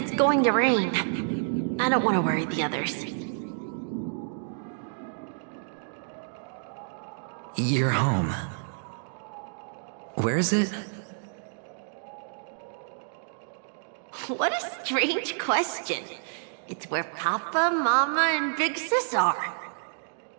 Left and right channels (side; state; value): left; silent; digital silence